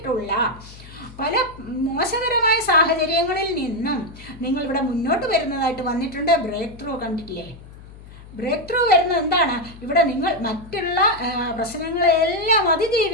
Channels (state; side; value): noise; left; hum, 18 dB below the sound